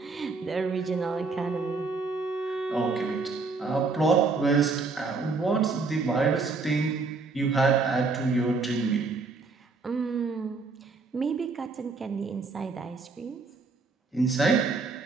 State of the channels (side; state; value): left; quieter; 4.1 dB